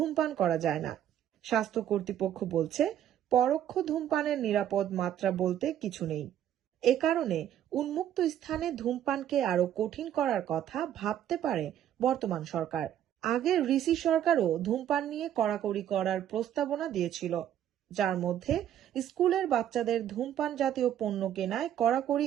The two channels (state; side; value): quieter; left; 10.8 dB